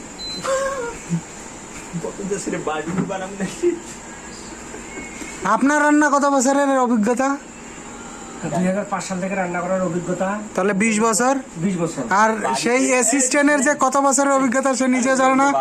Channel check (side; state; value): both; identical; correlation 1.00